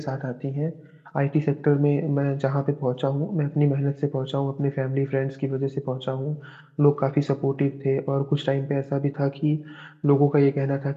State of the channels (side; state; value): both; identical; correlation 1.00